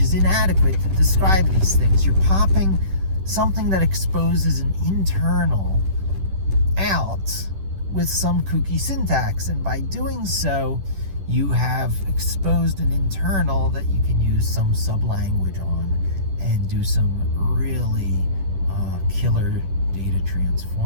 is inadequate to describe these things. You're popping something that exposes an internal out with some kooky syntax, and by doing so you have exposed an internal that you can use some sub-language on and do some really killer data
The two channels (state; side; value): late; left; 10 ms